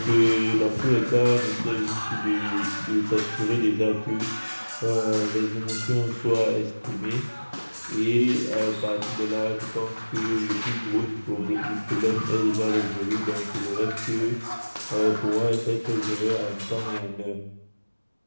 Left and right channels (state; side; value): inverted; both; correlation -1.00